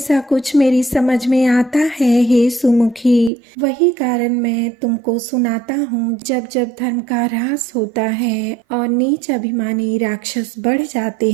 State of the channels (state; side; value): drops out; left; at 3.3 s